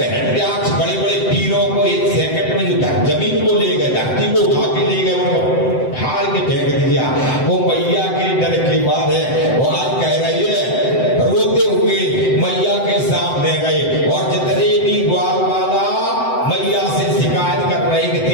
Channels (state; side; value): late; right; 7.8 ms